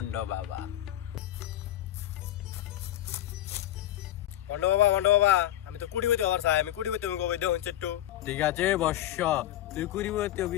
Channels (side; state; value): right; quieter; 13.3 dB